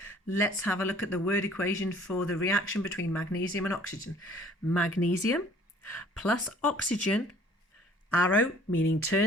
Let's have a look at the word equation for the reaction between magnesium and oxygen. Magnesium plus oxygen, arrow meaning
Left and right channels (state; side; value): normal; both; correlation 0.54